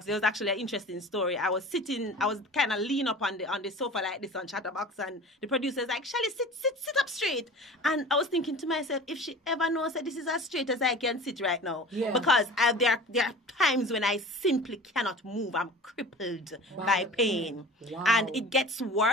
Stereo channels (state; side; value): normal; both; correlation 0.39